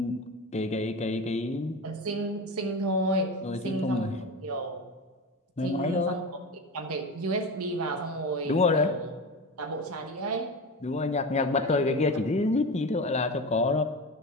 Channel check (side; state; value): both; normal; correlation 0.26